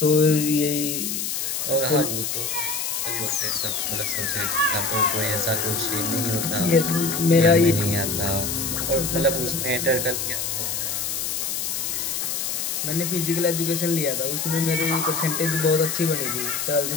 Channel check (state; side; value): noise; left; hiss, 2 dB below the sound